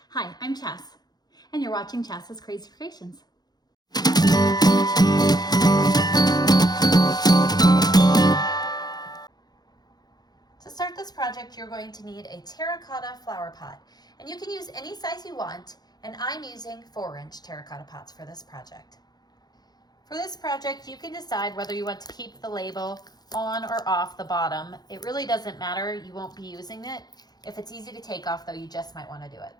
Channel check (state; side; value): late; right; 0.19 ms